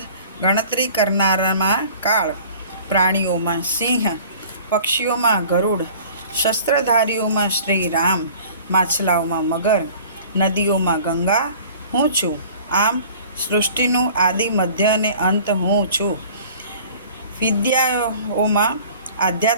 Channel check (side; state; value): both; inverted; correlation -0.47